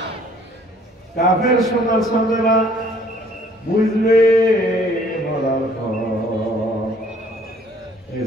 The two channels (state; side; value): normal; both; correlation 0.58